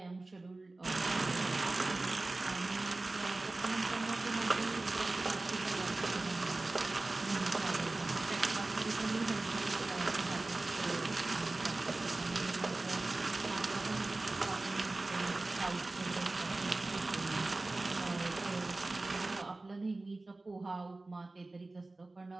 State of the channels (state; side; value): quieter; left; 3.1 dB